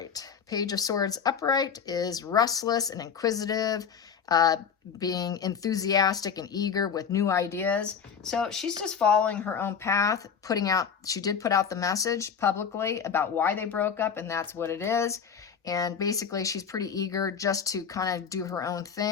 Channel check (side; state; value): right; quieter; 6.9 dB